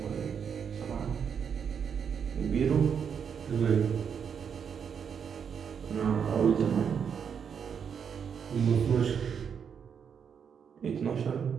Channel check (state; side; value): quieter; left; 7.2 dB